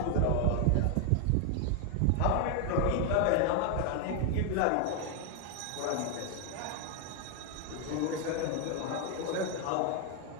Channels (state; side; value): different; both; correlation 0.00